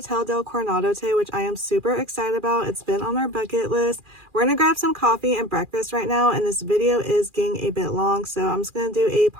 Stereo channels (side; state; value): left; late; 2.4 ms